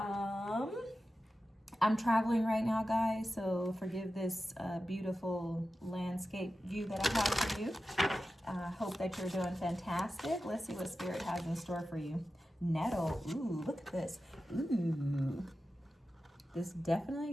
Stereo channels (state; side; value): normal; both; correlation 0.93